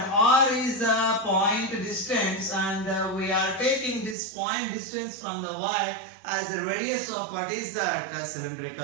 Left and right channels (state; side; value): drops out; left; at 4.2 s